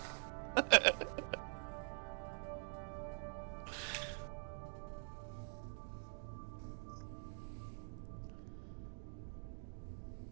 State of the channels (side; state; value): left; silent; digital silence